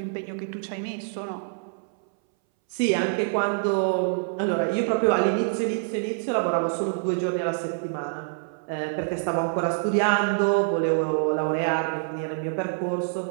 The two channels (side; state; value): left; silent; 61 dB below the other